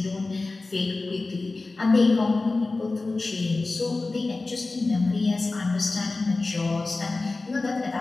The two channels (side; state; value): right; quieter; 3.4 dB